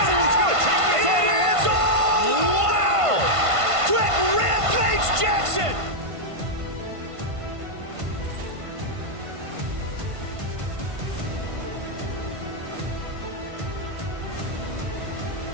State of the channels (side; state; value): left; late; 1.5 ms